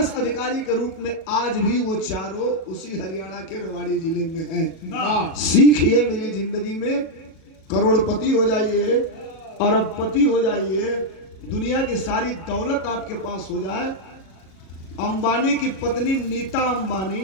अधिकारी के रूप में आज भी वो चारों उसी हरियाणा के रेवाड़ी जिले में हैं। सीखिए मेरी जिंदगी में करोड़पति हो जाइए अरबपति हो जाइए दुनिया की सारी दौलत आपके पास हो जाए। अंबानी की पत्नी नीता अंबानी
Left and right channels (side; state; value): right; late; 37 ms